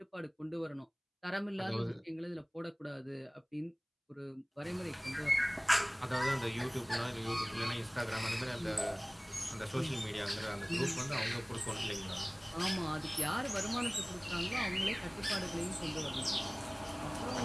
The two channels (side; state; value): both; identical; correlation 1.00